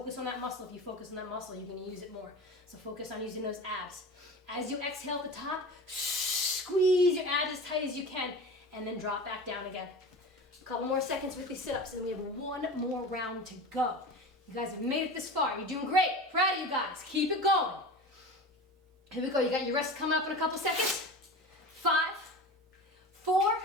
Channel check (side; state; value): both; normal; correlation 0.32